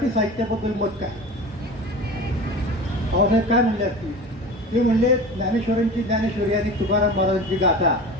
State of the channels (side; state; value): both; normal; correlation 0.34